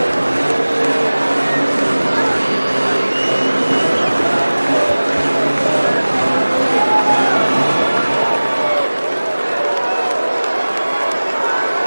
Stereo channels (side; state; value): both; inverted; correlation -1.00